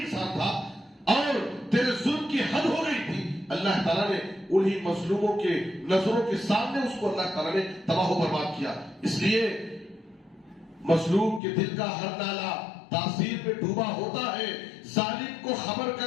تھا اور تیرے ظلم کی حد ہو گئی تھی۔ اللہ تعالیٰ نے انہی مظلوموں کے نظروں کے سامنے اس کو اللہ تعالیٰ نے تباہ و برباد کیا۔ اس لیے مظلوم کے دل کا ہر نالا تاثیر میں ڈوبا ہوتا ہے۔ ظالم کو خبر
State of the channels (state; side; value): drops out; right; at 11.4 s